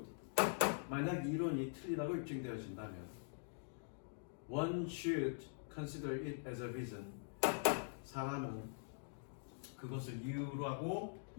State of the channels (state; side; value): silent; right; digital silence